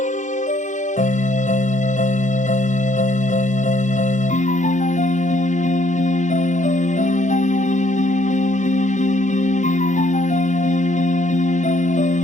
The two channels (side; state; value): both; normal; correlation 0.67